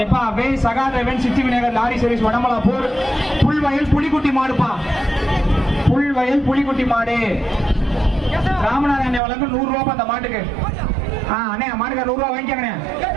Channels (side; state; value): left; drops out; at 9.2 s